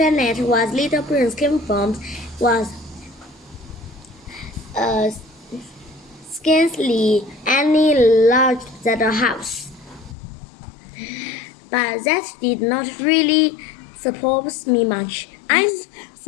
where little prince came from was scarcely any larger than a house. But that did not really surprise me much.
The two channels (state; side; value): drops out; right; at 10.2 s